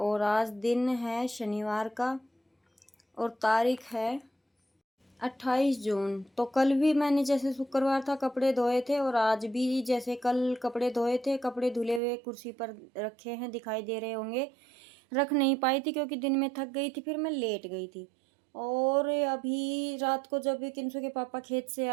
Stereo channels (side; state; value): left; drops out; at 12.0 s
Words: आज दिन है शनिवार का और तारीख है 28 जून। तो कल भी मैंने जैसे शुक्रवार था कपड़े धोए थे और आज भी जैसे कल कपड़े धोए थे, कपड़े धुले हुए कुर्सी पर रखे हैं, दिखाई दे रहे होंगे। रख नहीं पाई थी क्योंकि दिन में थक गई थी, फिर मैं लेट गई थी। और अभी रात को जब किंसु के पापा खेत से